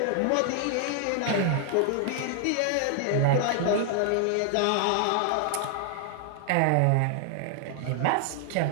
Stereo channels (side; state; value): both; different; correlation 0.00